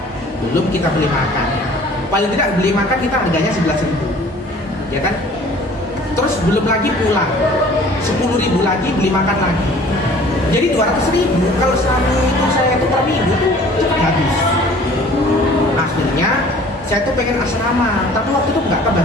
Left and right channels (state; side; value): normal; both; correlation 0.50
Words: belum kita beli makan. Paling tidak beli makan kita harganya 11.000 ya kan. Terus belum lagi pulang 10.000 lagi beli makan lagi. Jadi 200.000 kalau selama itu saya itu per minggu tuh cepat habis. Akhirnya saya tuh pengen asrama, tapi waktu itu nggak